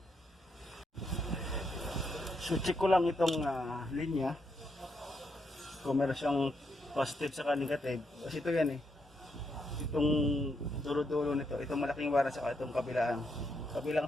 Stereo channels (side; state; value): both; normal; correlation 0.79